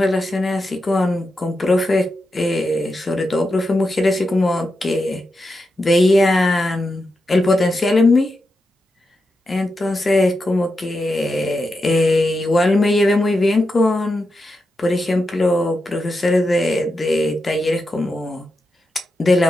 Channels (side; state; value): both; normal; correlation 0.88